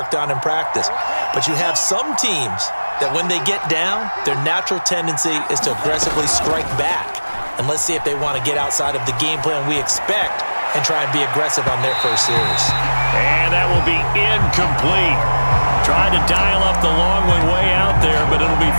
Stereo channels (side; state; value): both; inverted; correlation -1.00